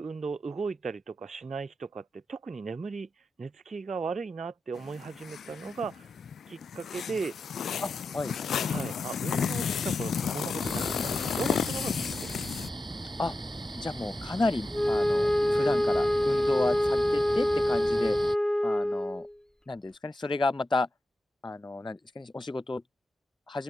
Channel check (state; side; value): normal; both; correlation 0.91